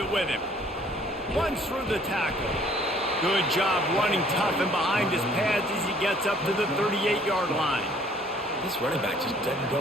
with him. Runs through the tackle. Good job running tough and behind his pads as he gets up to the 38-yard line. This running back just doesn't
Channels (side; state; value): both; normal; correlation 0.58